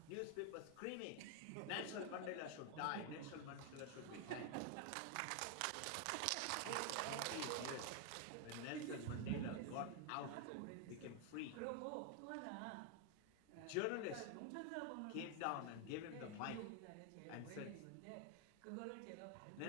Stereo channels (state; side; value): different; both; correlation 0.01